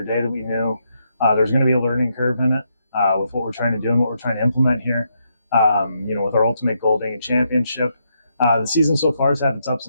day, that we knew there's going to be a learning curve in it with what we're trying to do and what we're trying to implement here. With our ultimate goal being a championship. The season so far has had its ups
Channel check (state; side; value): inverted; both; correlation -0.79